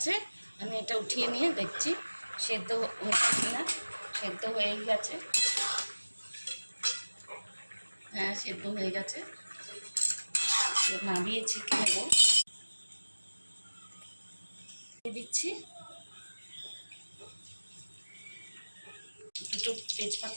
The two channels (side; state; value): both; inverted; correlation -1.00